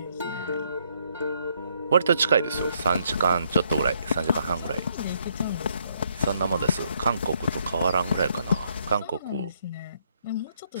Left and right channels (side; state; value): both; inverted; correlation -0.71